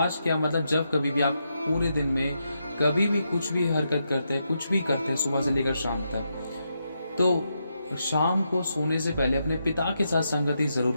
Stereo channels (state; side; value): inverted; both; correlation -0.83